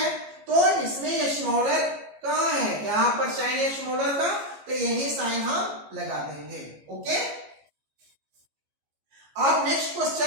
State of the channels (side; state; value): left; late; 14 ms